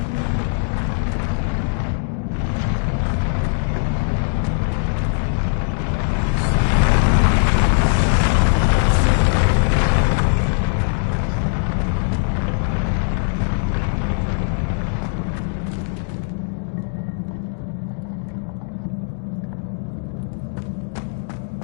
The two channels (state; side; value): silent; right; digital silence